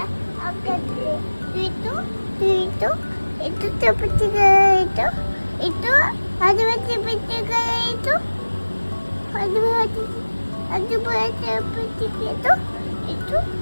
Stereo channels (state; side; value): inverted; both; correlation -1.00